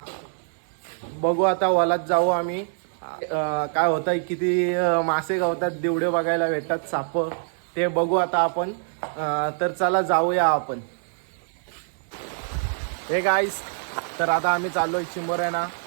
बघू आता वलात जाऊ आम्ही. काय होतं, किती मासे गावतात, दिवडे बघायला भेटतात, साप, ते बघू आता आपण. तर चला जाऊया आपण. हे गाईज, तर आता आम्ही चाललोय चिंबोऱ्यांना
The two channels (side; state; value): left; silent; digital silence